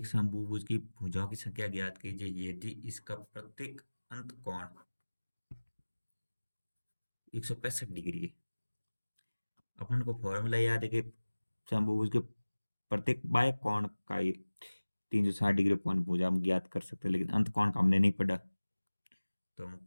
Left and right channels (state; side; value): inverted; both; correlation -1.00